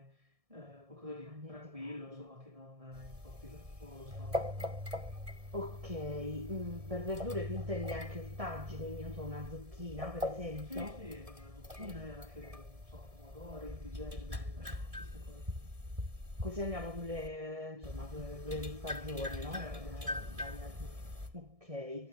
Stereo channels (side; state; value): left; late; 1.7 ms